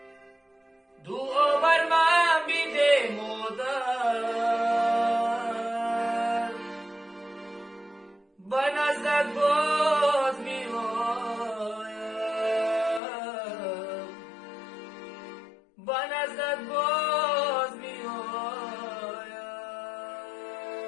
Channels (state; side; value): drops out; right; at 13.0 s